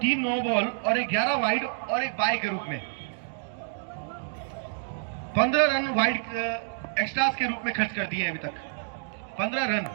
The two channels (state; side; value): silent; left; digital silence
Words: नो बॉल और 11 वाइड और 1 बाई के रूप में 15 रन वाइड एक्स्ट्रास के रूप में खर्च कर दिए अभी तक। 15 रन,